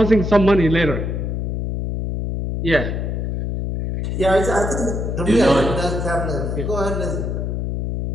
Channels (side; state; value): left; noise; hum, 2 dB below the sound